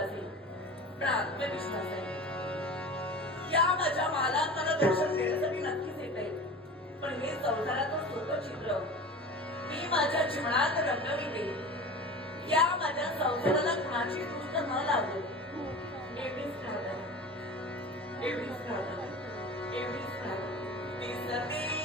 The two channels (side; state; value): both; normal; correlation 0.34